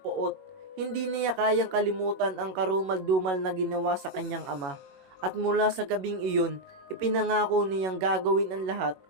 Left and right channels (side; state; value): left; late; 21 ms